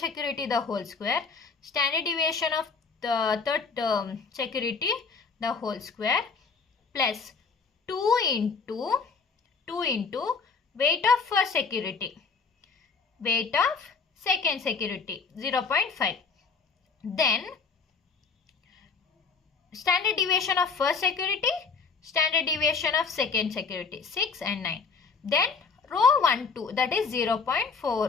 the whole square, standard deviation of the third security the whole square, plus 2 into weight of first security, weight of second security 0.5. Then standard deviation of first security, standard deviation of second security 6 and 9. Then row 1 2, that is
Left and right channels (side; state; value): right; quieter; 5.0 dB